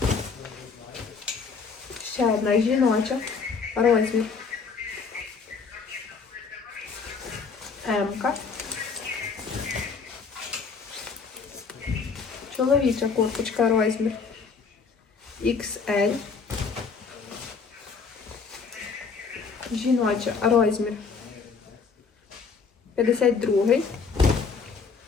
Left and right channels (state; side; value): quieter; right; 5.2 dB